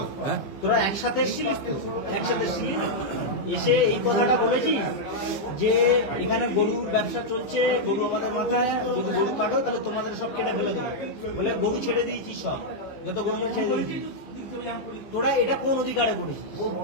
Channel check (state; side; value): late; right; 15 ms